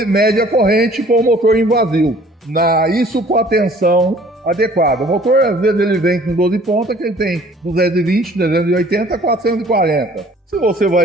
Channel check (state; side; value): normal; both; correlation 0.54